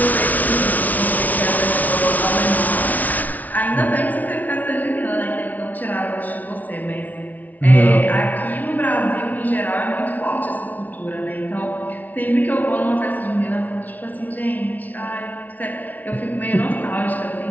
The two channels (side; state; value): right; late; 0.075 ms